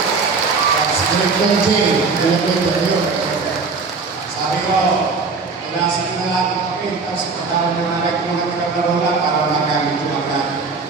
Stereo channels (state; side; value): quieter; left; 4.4 dB